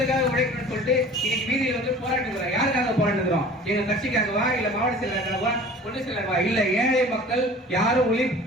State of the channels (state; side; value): normal; both; correlation 0.44